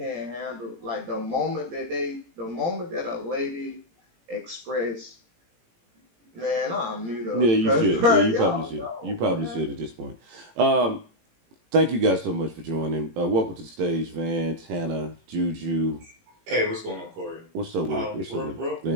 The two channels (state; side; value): late; left; 18 ms